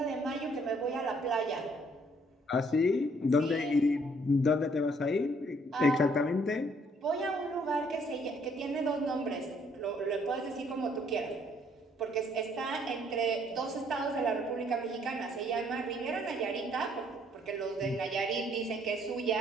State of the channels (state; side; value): normal; both; correlation 0.65